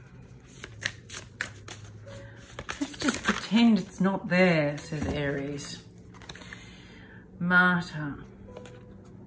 Let's just pretend it's not there, says Aries. Martyr,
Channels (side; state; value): both; identical; correlation 1.00